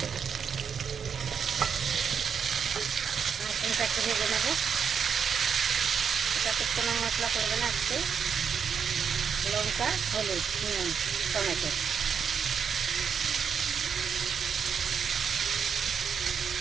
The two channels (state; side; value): quieter; left; 6.9 dB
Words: দেবো। মাশরুমটা একটু ভেজে নেবো। এটাতে কোনো মশলা করবে না, একটু লঙ্কা, হলুদ, নুন, টমেটো।